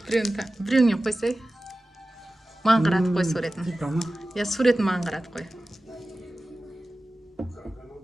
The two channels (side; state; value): both; normal; correlation 0.96